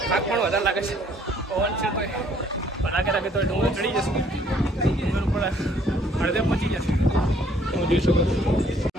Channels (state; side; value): normal; both; correlation 0.62